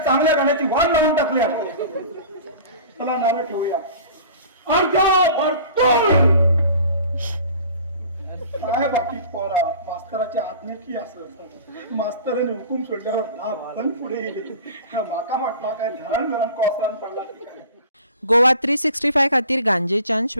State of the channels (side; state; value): both; inverted; correlation -0.41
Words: चांगल्या गाण्याची वाट लावून टाकली। चला नारळ ठेवूया। काय बाकी पोरा, मास्तराची आज्ञेची असं मास्तराने हुकूम सोडल्यावर पण पुढे गेले। माका वाटला काय धरण धरण कोसळून पडला। गोवा 365 खातीर गांजेच्यान